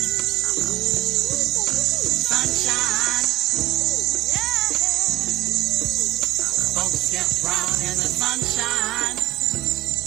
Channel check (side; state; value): left; quieter; 16.2 dB